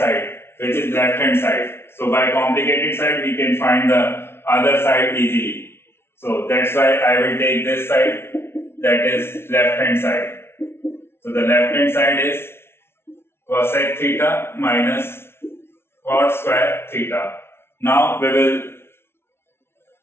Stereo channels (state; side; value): late; right; 0.12 ms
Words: which is left hand side. So by complicated side we can find the other side easily. So that's why I will take this side, that is left hand side. So the left hand side is cosec theta minus cot square theta. Now we will